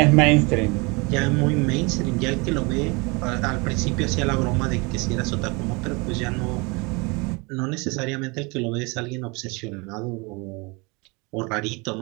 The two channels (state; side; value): quieter; left; 28.2 dB